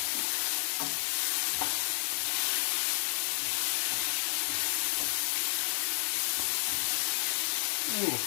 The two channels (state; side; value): silent; right; digital silence